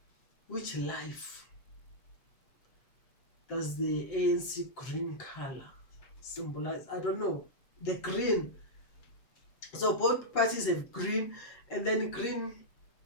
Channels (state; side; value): late; right; 7.6 ms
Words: which life does the ANC green color symbolize? I don't know. The green. So both parties have green, and then green